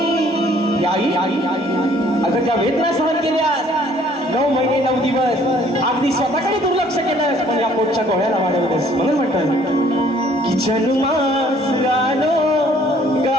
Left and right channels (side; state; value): both; normal; correlation 0.59